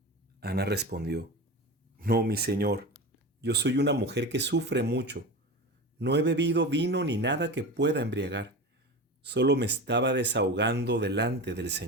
Ana respondió: No, mi señor, yo soy una mujer que sufre mucho. No he bebido vino ni nada que pueda embriagar. Solo me estaba desahogando delante del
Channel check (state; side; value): normal; both; correlation 0.28